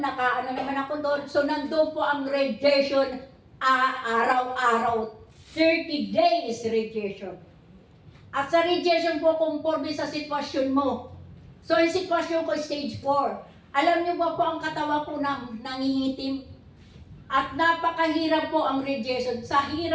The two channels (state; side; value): identical; both; correlation 1.00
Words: naman ako doon. So nandoon po ang radiation araw-araw. 30 days radiation. At sa radiation po, conforme sa sitwasyon mo. So yung sitwasyon ko, stage 4. Alam niyo ba po ang katawan ko nangingitim? At napakahirap po ang radiation. Sa